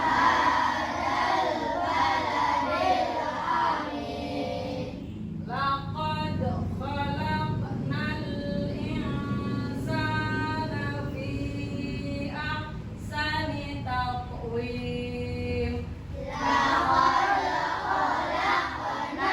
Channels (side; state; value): both; identical; correlation 1.00